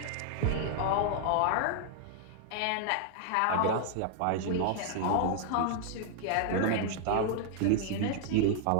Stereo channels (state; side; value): different; both; correlation -0.01